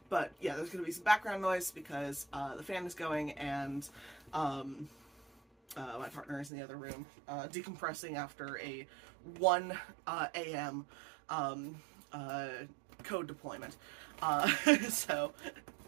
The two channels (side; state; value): left; drops out; at 6.5 s